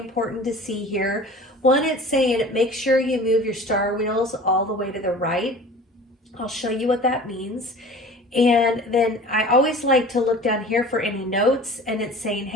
to see here. One, it's saying make sure you move your star wheels all the way to the right. I'll show you what that means. And then I always like to look down here for any notes, and it's saying,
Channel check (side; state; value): both; normal; correlation 0.41